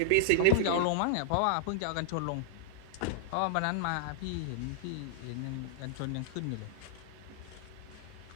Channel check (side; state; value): both; different; correlation -0.01